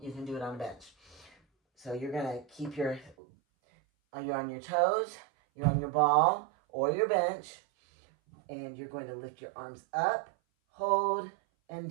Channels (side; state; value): left; drops out; at 3.2 s